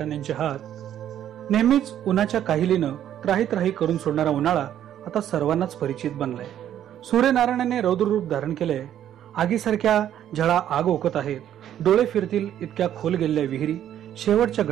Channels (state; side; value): quieter; left; 10.8 dB